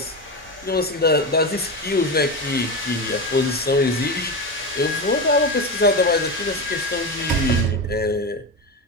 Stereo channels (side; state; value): both; normal; correlation 0.19